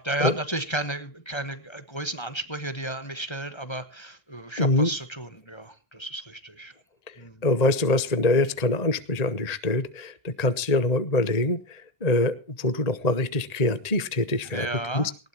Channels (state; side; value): late; right; 1.8 ms